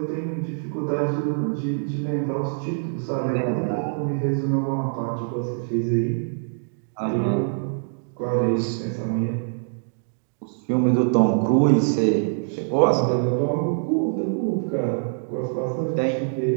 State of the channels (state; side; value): silent; left; digital silence